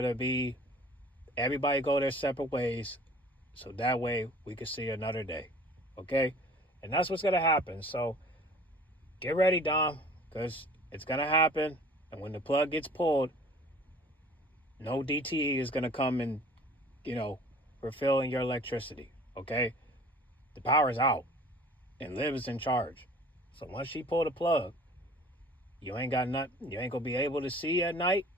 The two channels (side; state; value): both; normal; correlation 0.48